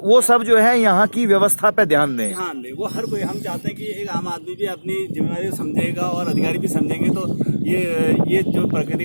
वो सब जो है यहाँ की व्यवस्था पे ध्यान दें। वो हर कोई, हम चाहते हैं कि एक आम आदमी भी अपनी जिम्मेदारी समझेगा और अधिकारी भी समझेंगे तो ये जो प्रकृति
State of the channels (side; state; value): both; inverted; correlation -1.00